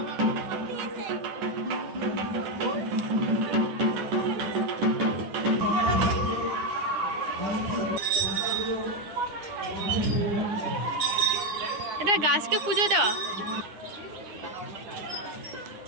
এটা গাছকে পুজো দেওয়া।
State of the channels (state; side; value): late; left; 9.8 ms